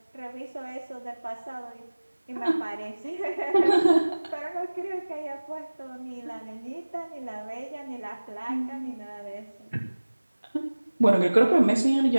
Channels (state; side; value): inverted; both; correlation -1.00